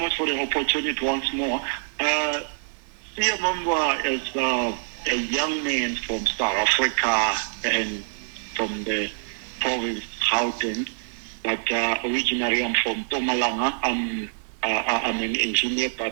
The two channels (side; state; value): left; silent; digital silence